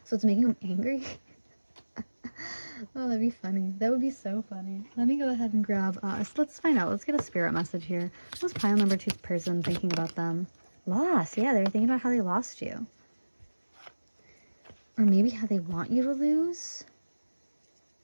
So it's making them angry. Oh, that'd be funny. That would be so funny. Let me go ahead and grab us. Let's find out. Let's get a spirit message here. What was pile number 2's person thinking about them? Loss. Yeah, they were thinking about how they lost you. Or maybe how they want you to lose.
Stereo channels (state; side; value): inverted; both; correlation -1.00